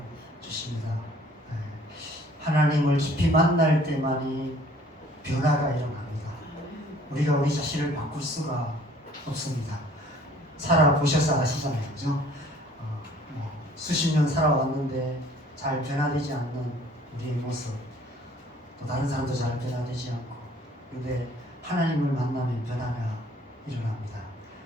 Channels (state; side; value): normal; both; correlation 0.55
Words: 주십니다. 하나님을 깊이 만날 때만이 변화가 일어납니다. 우리가 우리 자신을 바꿀 수가 없습니다. 살아보셔서 아시잖아요. 그죠? 수십 년 살아왔는데 잘 변화되지 않는 우리의 모습, 또 다른 사람도 잘 변화되지 않고, 그런데 하나님을 만나면 변화가 일어납니다.